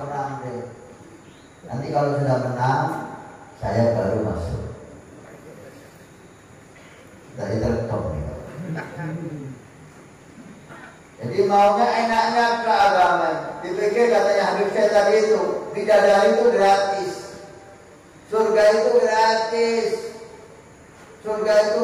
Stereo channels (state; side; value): identical; both; correlation 1.00